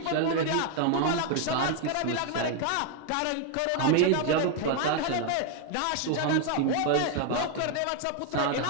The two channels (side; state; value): both; different; correlation 0.01